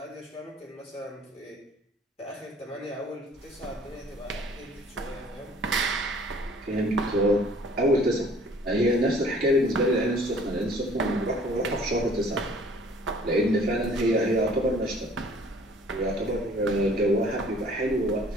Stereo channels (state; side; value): normal; both; correlation 0.54